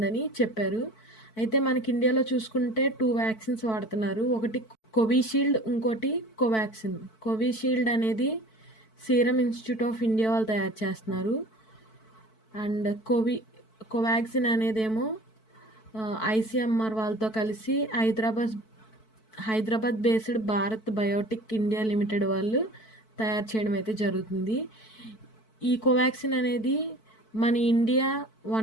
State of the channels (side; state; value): right; late; 4.6 ms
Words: చెప్పారు. అయితే మనకి ఇండియాలో చూసుకుంటే 2 వ్యాక్సిన్స్ వాడుతున్నారు. ఒకటి కోవిషీల్డ్, ఇంకోటి కోవాక్సిన్. కోవిషీల్డ్ అనేది సీరం ఇన్స్టిట్యూట్ ఆఫ్ ఇండియా వాళ్ళు తయారు చేస్తున్నారు. అండ్ కోవాక్సిన్ అనేదేమో ఐసీఎంఆర్ వాళ్ళతో కలిసి Hyderabad based Bharat Biotech India limited వాళ్ళు తయారు చేయడం అయితే జరుగుతుంది. ఈ కోవాక్సిన్ అనేది మన India